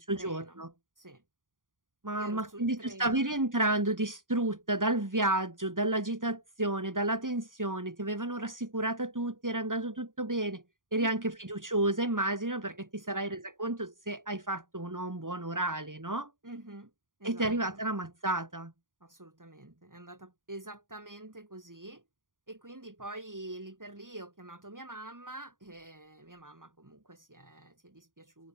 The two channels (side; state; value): left; late; 0.89 ms